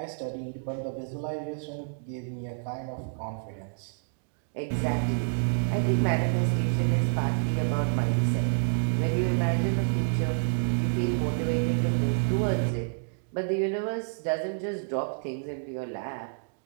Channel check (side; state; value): left; silent; digital silence